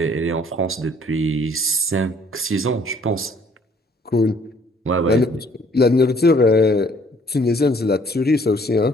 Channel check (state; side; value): normal; both; correlation 0.60